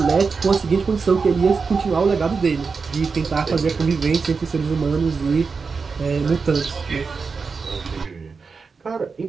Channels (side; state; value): left; quieter; 4.9 dB